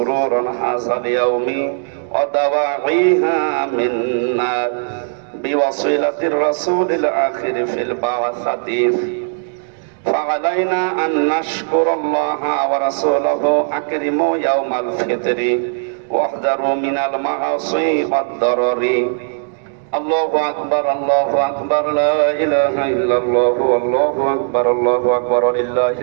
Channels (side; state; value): left; silent; digital silence